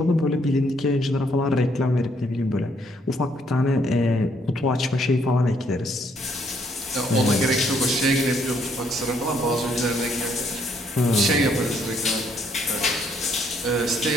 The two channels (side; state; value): both; normal; correlation 0.69